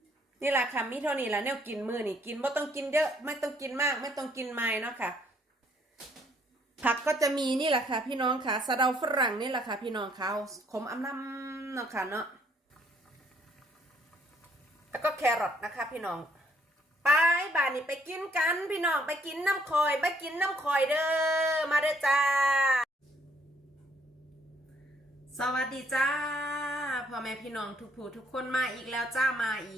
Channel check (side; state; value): both; normal; correlation 0.66